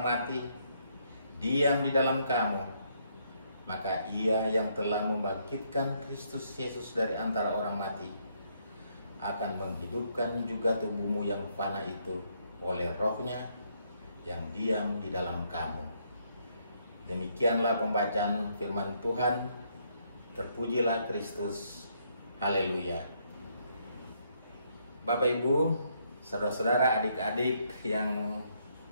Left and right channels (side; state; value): both; inverted; correlation -0.72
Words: mati diam di dalam kamu, maka Ia yang telah membangkitkan Kristus Yesus dari antara orang mati akan menghidupkan juga tubuhmu yang fana itu oleh rohnya yang diam di dalam kamu. Demikianlah pembacaan firman Tuhan. Terpujilah Kristus. Haleluya. Bapak, Ibu, saudara-saudara, adik-adik yang